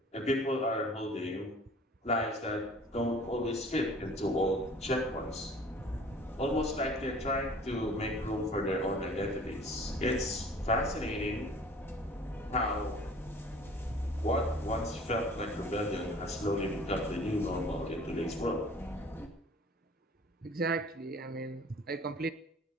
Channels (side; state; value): both; normal; correlation 0.49